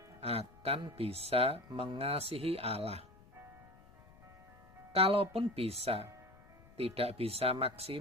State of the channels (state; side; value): noise; left; rumble, 24 dB below the sound